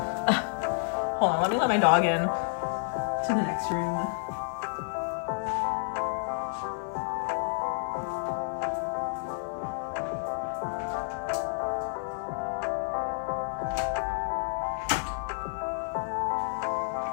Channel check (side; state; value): right; silent; digital silence